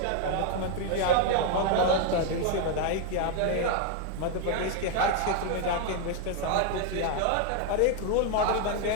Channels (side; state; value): both; different; correlation 0.00